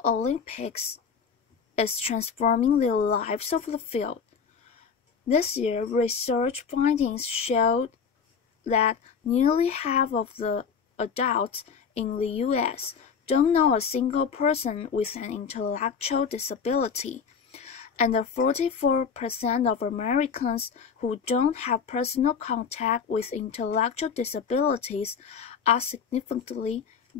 Olympics is transforming the lives of the field. This year, research findings showed that nearly half of the adults in the U.S. don't know a single person with an intellectual disability, and 44% of Americans who don't have personal contact with intellectual disabilities are significantly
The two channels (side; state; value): right; quieter; 6.3 dB